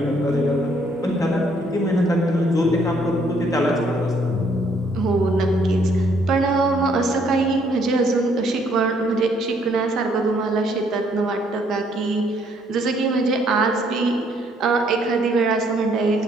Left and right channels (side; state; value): both; normal; correlation 0.67